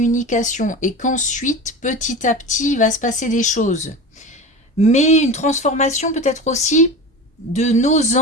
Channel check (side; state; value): both; normal; correlation 0.30